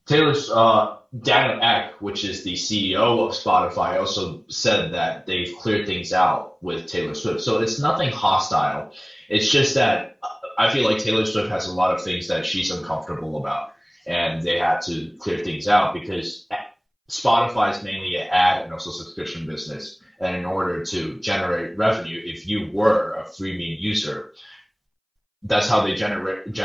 Taylor's Daniel Ek, which is the CEO of Spotify, also said that they've cleared things out with Taylor Swift. So it's nothing hostile. It's just that I feel like Taylor Swift has a lot of things that she's uncomfortable about, and they had to clear things out because Spotify is mainly an ad and also subscription business. And in order to generate revenue, if you were a freemium user, that's how they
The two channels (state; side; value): identical; both; correlation 1.00